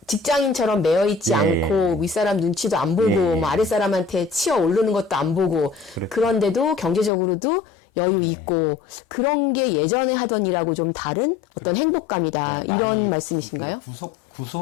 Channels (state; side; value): drops out; right; at 7.1 s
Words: 직장인처럼 매여 있지 예, 않고 윗사람 눈치도 안 보고 예, 뭐 아랫사람한테 치어 오르는 것도 안 보고 그렇죠. 그런데도 경제적으로도 여유 있고 그런 게 예전에 하던 일하고 좀 다른 어떤 행복감이다 네, 이런 많이 말씀이신가요?